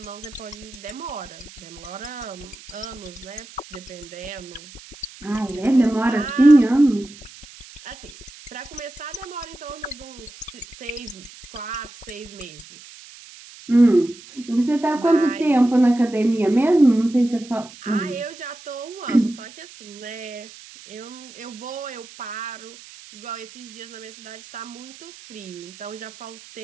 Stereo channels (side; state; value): right; noise; hiss, 19 dB below the sound